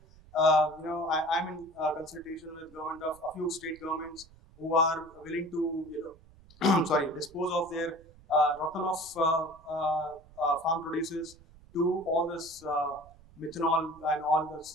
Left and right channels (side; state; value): right; noise; rumble, 24 dB below the sound